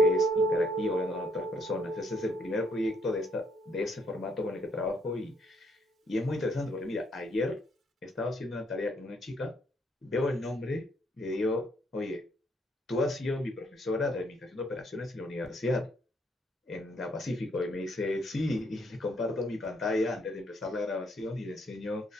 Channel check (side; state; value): both; normal; correlation 0.70